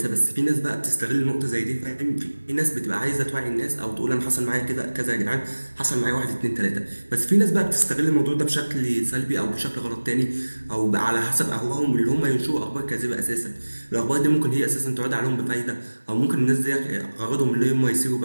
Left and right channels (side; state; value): both; inverted; correlation -1.00